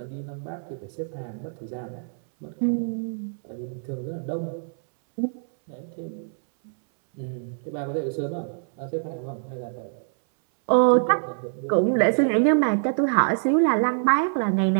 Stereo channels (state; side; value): silent; left; 62 dB below the other